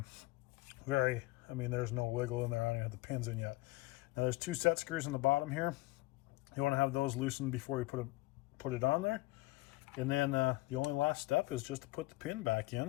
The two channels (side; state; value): right; quieter; 20.4 dB